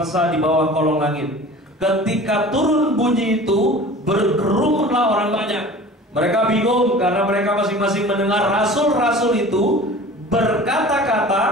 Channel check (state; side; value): normal; both; correlation 0.41